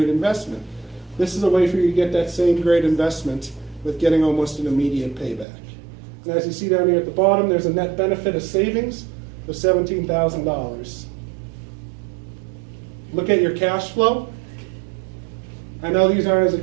investment. This is a way for you to get that same great investment with getting almost an immediate payback. And as you see down here at the bottom, there's a net benefit of savings of $17,000. Look at your cash flow. I know these aren't as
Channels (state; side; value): drops out; left; at 5.5 s